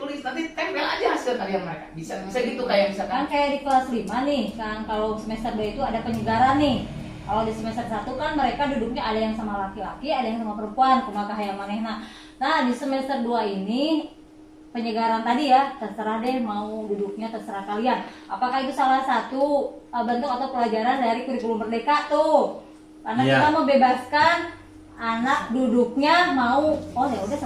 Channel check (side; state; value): both; identical; correlation 1.00